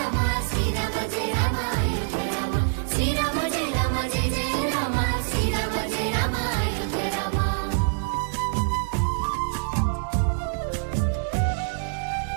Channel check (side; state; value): left; silent; 61 dB below the other